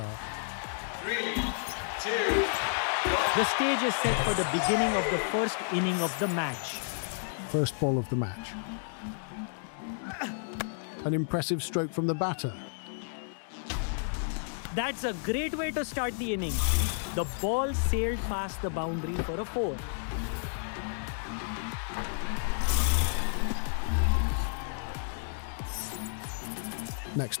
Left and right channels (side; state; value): right; silent; digital silence